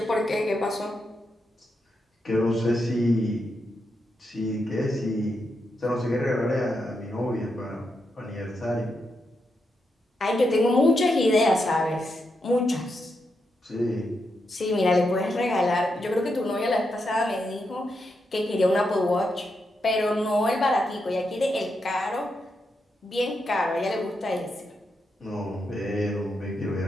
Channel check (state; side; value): normal; both; correlation 0.84